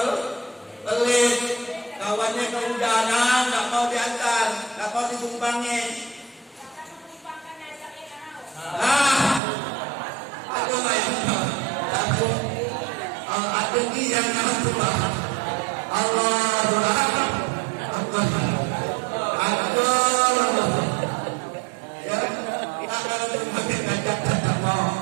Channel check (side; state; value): left; drops out; at 9.4 s